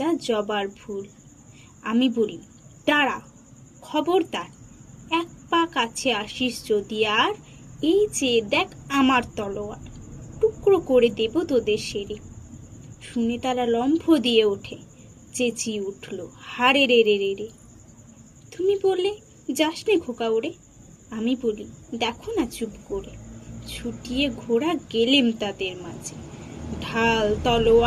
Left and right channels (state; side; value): identical; both; correlation 1.00